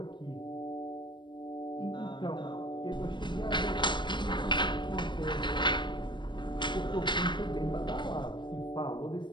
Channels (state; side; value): late; right; 0.22 ms